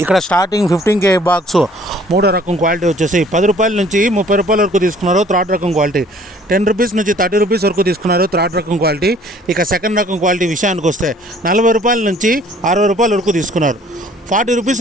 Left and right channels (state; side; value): normal; both; correlation 0.56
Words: ఇక్కడ స్టార్టింగ్ 15K బాక్స్ మూడో రకం క్వాలిటీ వచ్చేసి 10 రూపాయల నుంచి 30 రూపాయల వరకు తీసుకున్నారు థర్డ్ రకం క్వాలిటీ. 10 రూపీస్ నుంచి 30 రూపీస్ వరకు తీసుకున్నారు థర్డ్ రకం క్వాలిటీ. ఇక సెకండ్ రకం క్వాలిటీ విషయానికి వస్తే 40 రూపాయల నుంచి 60 రూపాయల వరకు తీసుకున్నారు. 40